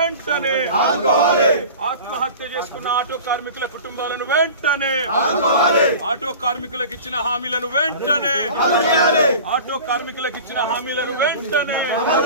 ఆత్మహత్య చేసుకున్న ఆటో కార్మికుల కుటుంబాలను వెంటనే ఆటో కార్మికులకు ఇచ్చిన హామీలను వెంటనే ఆటో కార్మికులకు ఇచ్చిన హామీలను వెంటనే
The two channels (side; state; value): both; inverted; correlation -0.38